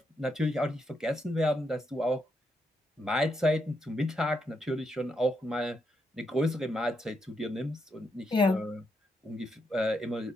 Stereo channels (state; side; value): normal; both; correlation 0.81